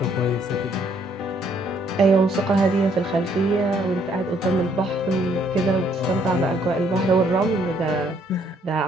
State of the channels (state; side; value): normal; both; correlation 0.67